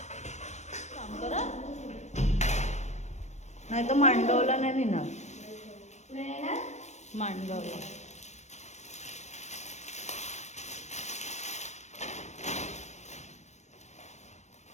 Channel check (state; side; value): late; right; 0.33 ms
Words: नाही तर मांडवला नाही ना, मांडगावला.